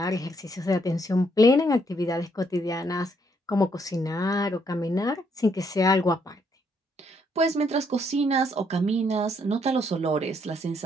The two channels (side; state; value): both; normal; correlation 0.72